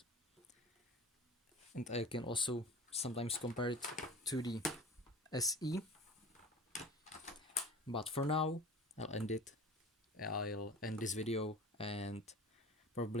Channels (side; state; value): both; normal; correlation 0.39